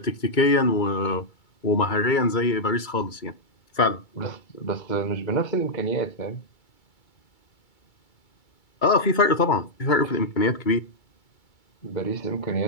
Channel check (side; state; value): right; late; 2.3 ms